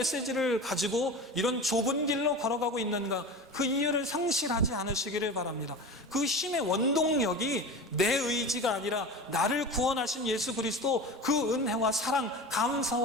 가지고 이런 좁은 길로 걸어가고 있는가? 그 이유를 상실하지 않으시기를 바랍니다. 그 힘의 원동력이 내 의지가 아니라 나를 구원하신 예수 그리스도 그 은혜와 사랑,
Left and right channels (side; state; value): both; normal; correlation 0.30